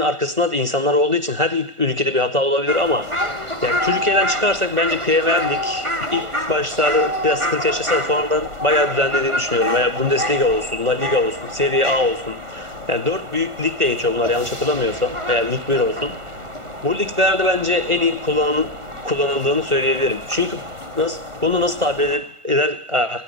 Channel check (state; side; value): late; left; 1.5 ms